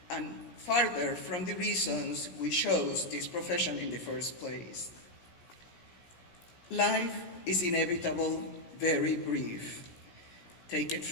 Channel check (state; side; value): late; right; 17 ms